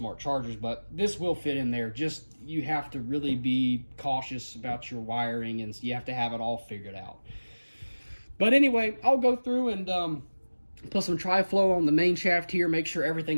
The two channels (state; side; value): inverted; both; correlation -1.00